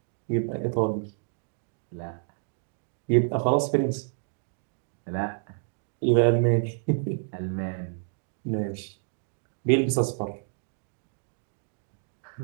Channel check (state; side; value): silent; left; digital silence